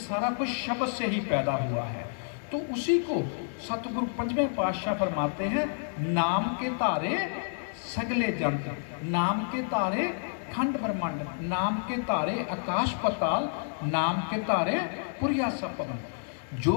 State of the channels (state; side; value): silent; right; digital silence